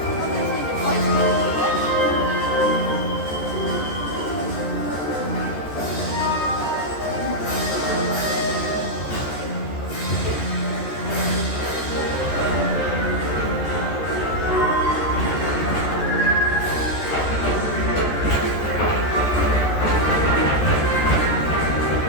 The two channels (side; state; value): right; late; 13 ms